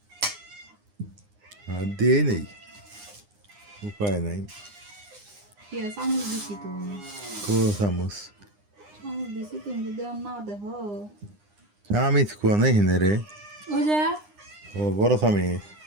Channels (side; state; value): left; late; 9.8 ms